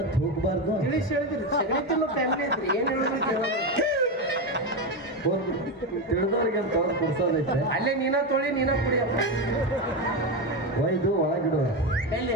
ಹೋಗ್ಬಾರ್ದು ತಿಳಿಸಿ ಹೇಳಿದ್ರಿ ಸಗಣಿತಿನ್ನು ಫ್ಯಾಮಿಲಿ ಐತ್ರಿ ಏನ್ ಹೇಳಿದ್ರಿ ತಿಳಿದವ್ರಿಗೆ ಅಂತ ಅವ್ರು ಕೊಡ್ಸೋದೈತೆ ಅಲ್ಲೇ ನೀನ ತೊಳಿ ನೀನ ಕುಡಿಯಪ್ಪ ಒಯ್ದು ಒಳಗಿಡುವ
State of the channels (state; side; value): normal; both; correlation 0.13